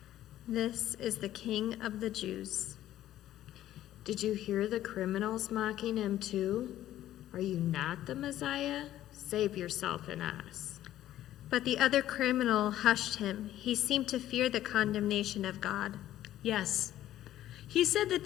"This is the King of the Jews." Did you hear the criminals mocking him too? Are you not the Messiah? Save yourself and us. But the other criminal hushed him. He seemed to fear the condemnation of God. Yes. He said that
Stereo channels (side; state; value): right; quieter; 13.1 dB